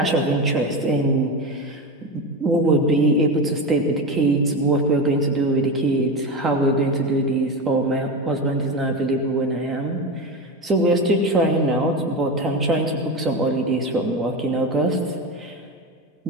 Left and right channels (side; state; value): both; normal; correlation 0.20